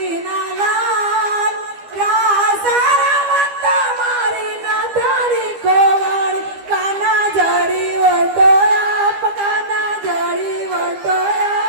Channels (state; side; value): late; left; 12 ms